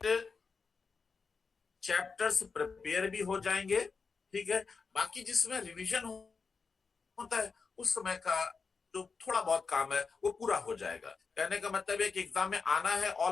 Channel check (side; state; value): right; quieter; 5.0 dB